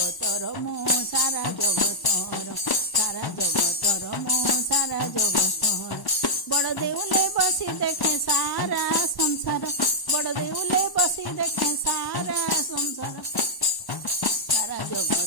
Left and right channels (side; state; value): right; late; 1.1 ms